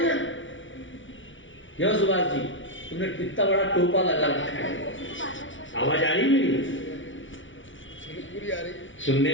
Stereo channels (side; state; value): right; late; 0.56 ms